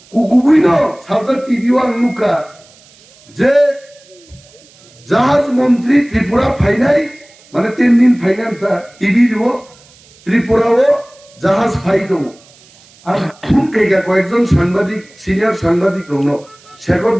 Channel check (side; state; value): right; noise; hiss, 27 dB below the sound